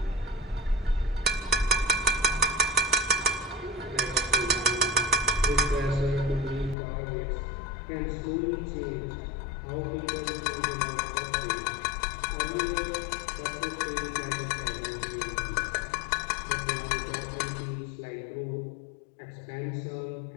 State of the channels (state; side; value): drops out; right; at 6.8 s